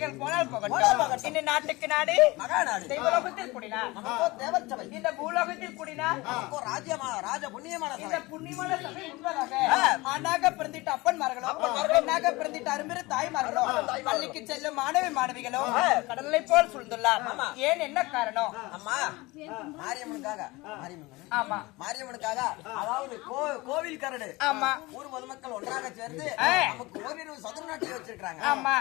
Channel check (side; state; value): right; quieter; 22.1 dB